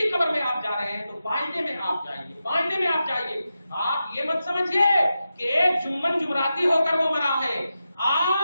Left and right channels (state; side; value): inverted; both; correlation -0.90